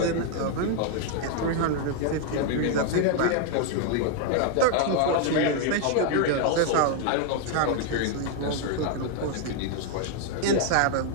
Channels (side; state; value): both; different; correlation 0.00